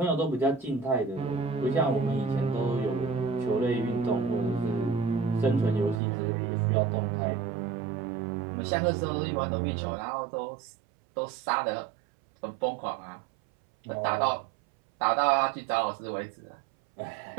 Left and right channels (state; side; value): drops out; left; at 6.0 s